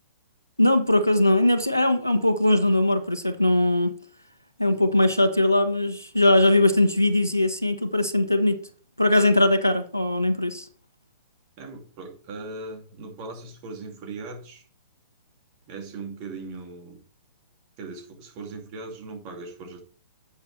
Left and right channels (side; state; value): both; inverted; correlation -0.88